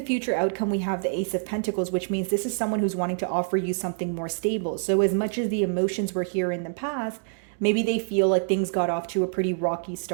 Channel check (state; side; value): silent; left; 61 dB below the other